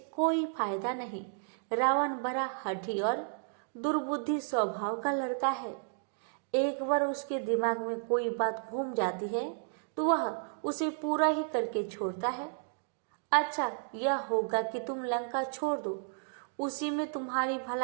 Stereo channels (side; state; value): left; silent; digital silence